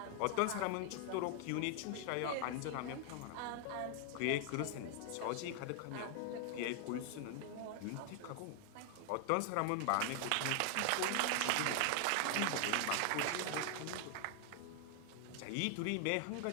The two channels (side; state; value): both; different; correlation 0.00